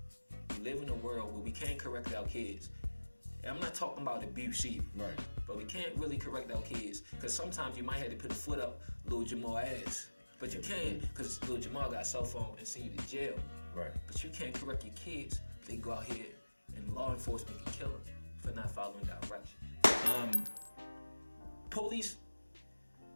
we live in a world where we can't correct our kids? And I'm not talking about abuse either. Right. But we can't really correct our kids because sometimes you might have to put a foot up Lil Jamal ass. But you can't because Lil Jamal got a cell phone and send you to jail. Right. But you can't correct your kids. They go out here and law enforcement can kill them for not following directions. Police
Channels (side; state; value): both; inverted; correlation -1.00